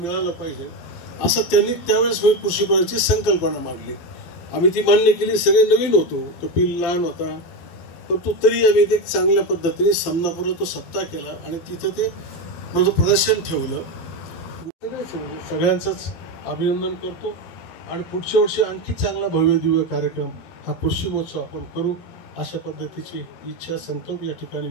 पाहिजे असं त्यांनी त्यावेळेस कृषी भवनाची संकल्पना मांडली. आम्ही ती मान्य केली. सगळे नवीन होतो, तो पिल लहान होता, परंतु तरी आम्ही ते चांगल्या पद्धतीने समनापूर्व तो सप्ताह केला आणि तिथं ते माझं प्रदर्शन ठेवलं. सगळ्यांचंच अभिनंदन करतो आणि पुढच्या वर्षी आणखी चांगला भव्य दिव्य कार्यक्रम हा कृषी महोत्सव आपण करू अशा पद्धतीची इच्छा संकल्प या ठिकाणी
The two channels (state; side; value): late; right; 12 ms